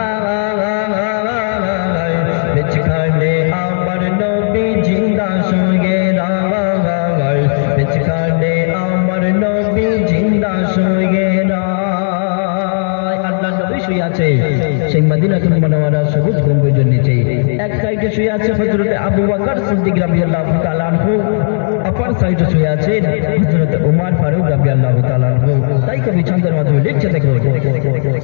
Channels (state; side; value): silent; right; digital silence